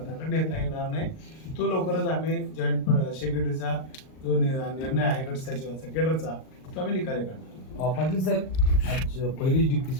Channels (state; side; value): late; right; 38 ms